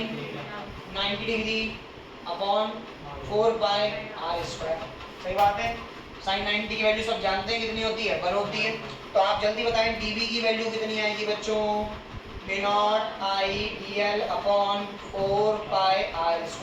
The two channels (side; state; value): both; identical; correlation 1.00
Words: 90 degree upon 4 pi r square. सही बात है। साइन 90 की वैल्यू सब जानते हैं कितनी होती है? 1 होती है। तो आप जल्दी बताएं dv की वैल्यू कितनी आएगी बच्चों? Mu naught I dl upon 4 pi r